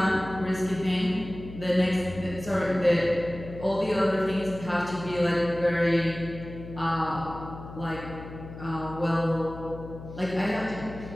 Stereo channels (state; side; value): noise; left; hum, 13 dB below the sound